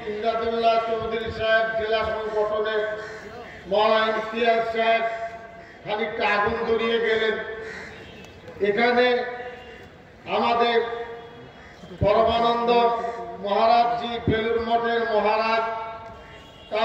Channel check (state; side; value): identical; both; correlation 1.00